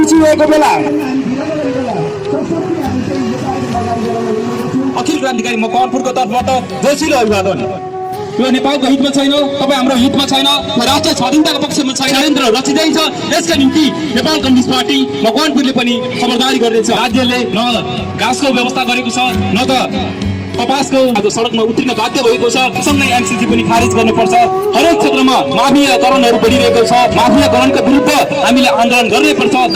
मिचिरहेको बेला अखिल क्रान्तिकारी मकवानपुरको तर्फबाट जोसिलो अभिवादन। यो नेपालको हितमा छैन, तपाईँ हाम्रो हितमा छैन, राष्ट्रिय स्वाधीनताको पक्षमा छैन, षड्यन्त्र रचिँदैछ। यसका निम्ति नेपाल कम्युनिस्ट पार्टी मकवानपुरले पनि खबरदारी गर्दैछ। राज्यले न घाँसको व्यवस्था गरेको छ न त कपासको आज सडकमा उत्रिन बाध्य भएको छ। सँगै एमसीसी पनि खारेज गर्नुपर्छ। हरेक क्षेत्रमा माफियाकरणहरू बढिरहेको छ। माफियाकरणका विरुद्ध हामीले आन्दोलन गर्नैपर्छ।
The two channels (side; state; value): both; identical; correlation 1.00